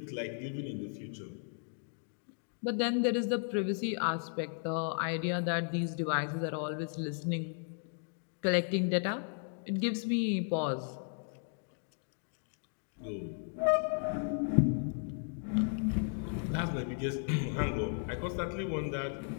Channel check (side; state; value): right; silent; 54 dB below the other